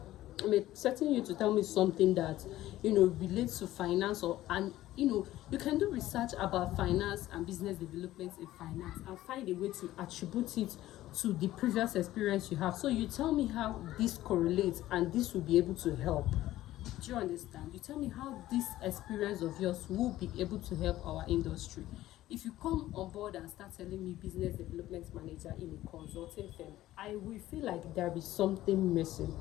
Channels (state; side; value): quieter; right; 15.0 dB